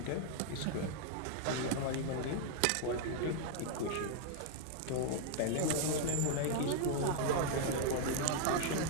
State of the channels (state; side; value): different; both; correlation 0.00